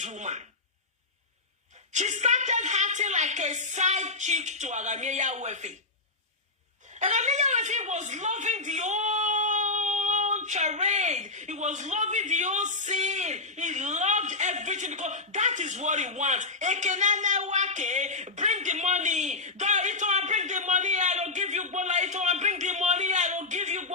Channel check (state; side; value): quieter; right; 3.5 dB